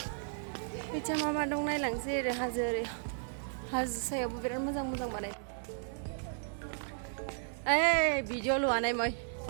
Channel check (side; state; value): left; silent; 55 dB below the other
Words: बिथिं मा मा दं नायलांसै ओरै हाजो सायावबो बिराद मोजां मोजां बानाय ओइ भिडिअ लुआनाय मै